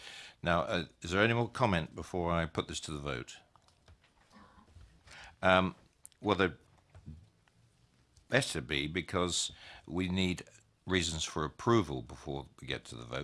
Now, is there any more comment before I put this to the vote? Well, there better be, because we need reasons for approval before we get to the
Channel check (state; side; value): identical; both; correlation 1.00